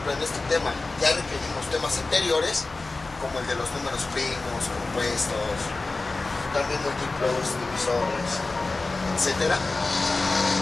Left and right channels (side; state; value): right; quieter; 3.4 dB